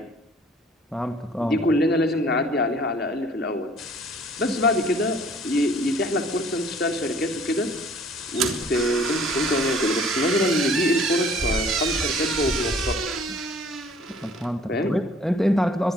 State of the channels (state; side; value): normal; both; correlation 0.54